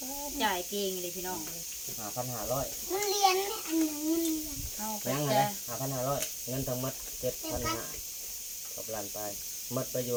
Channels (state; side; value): identical; both; correlation 1.00